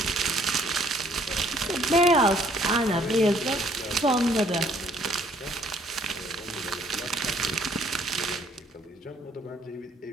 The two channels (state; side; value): normal; both; correlation 0.63